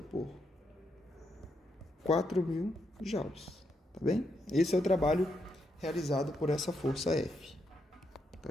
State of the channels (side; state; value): both; normal; correlation 0.80